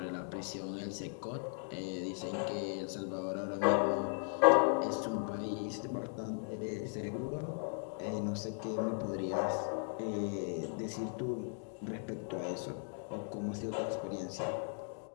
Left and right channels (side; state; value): right; silent; 53 dB below the other